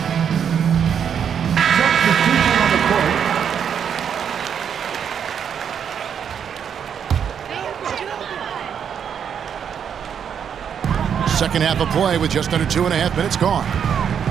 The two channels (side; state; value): left; quieter; 7.9 dB